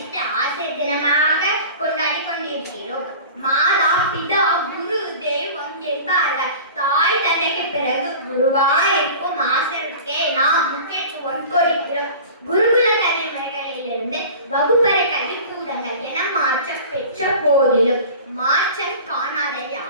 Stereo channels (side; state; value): both; inverted; correlation -0.38